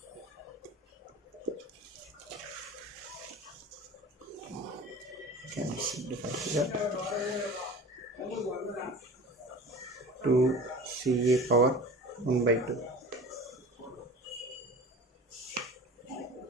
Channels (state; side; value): normal; both; correlation 0.38